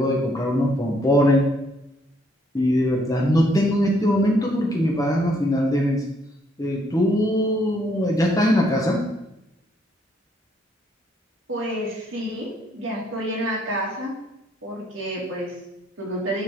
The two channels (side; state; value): both; normal; correlation 0.69